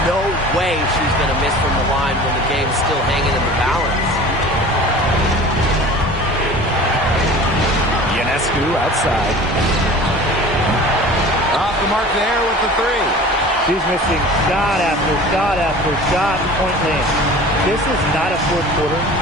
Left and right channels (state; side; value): normal; both; correlation 0.41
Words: No way she's going to miss from the line when the game's still hanging in the balance. Ionescu outside. Off the mark there with the 3. She's missing shot after shot after shot. Point land. This is not a fourth quarter